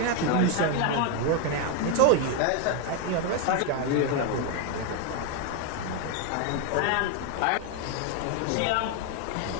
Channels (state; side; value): different; both; correlation 0.01